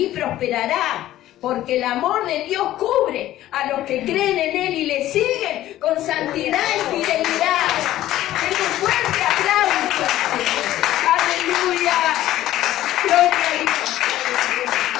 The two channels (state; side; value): quieter; right; 14.1 dB